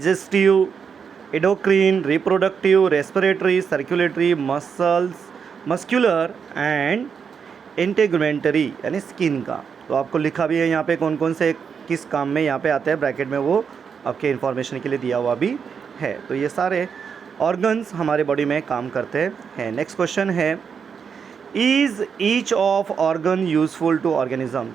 endocrine, reproductive, respiratory, circulatory, muscular and integumentary यानी स्किन का। तो आपको लिखा भी है यहाँ पे कौन कौन से किस काम में यहाँ पे आते हैं, ब्रैकेट में वो आपके इन्फॉर्मेशन के लिए दिया हुआ भी है। तो ये सारे ऑर्गन्स हमारे बॉडी में काम करते हैं। नेक्स्ट क्वेश्चन है, is each of organ useful to organism.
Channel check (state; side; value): quieter; left; 6.5 dB